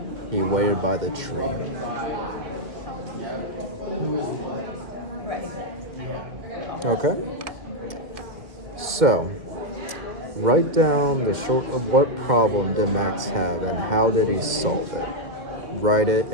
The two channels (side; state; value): left; late; 2.2 ms